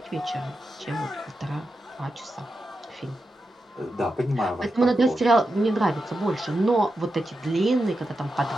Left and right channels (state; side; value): normal; both; correlation 0.89